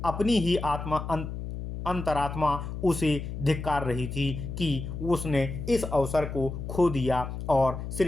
अपनी ही अंतरात्मा उसे धिक्कार रही थी कि उसने इस अवसर को खो दिया और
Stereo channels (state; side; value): noise; left; hum, 7 dB below the sound